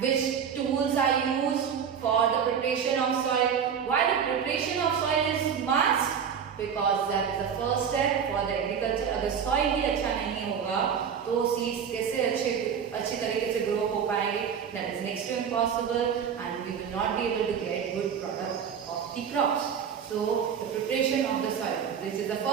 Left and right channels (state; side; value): quieter; left; 7.5 dB